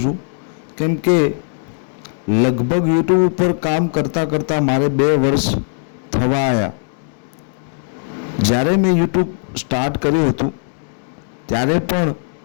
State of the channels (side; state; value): right; silent; digital silence